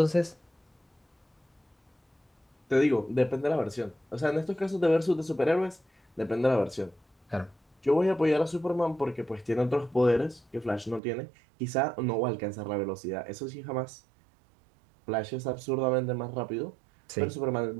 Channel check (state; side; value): drops out; left; at 11.0 s